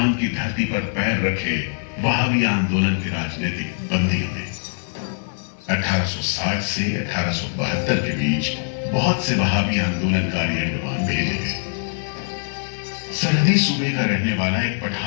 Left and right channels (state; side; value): silent; right; 60 dB below the other